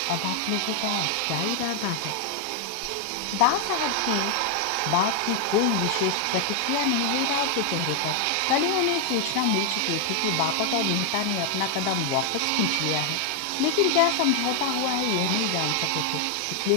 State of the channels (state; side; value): different; both; correlation 0.00